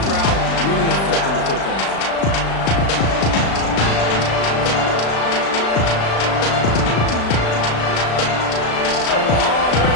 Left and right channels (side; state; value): right; late; 36 ms